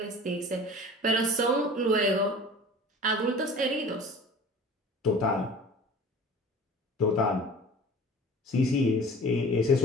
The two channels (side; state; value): both; normal; correlation 0.41